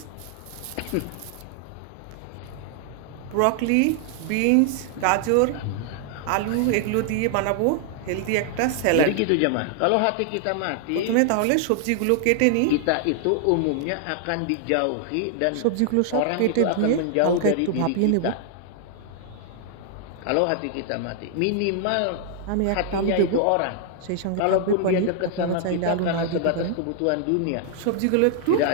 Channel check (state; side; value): different; both; correlation 0.00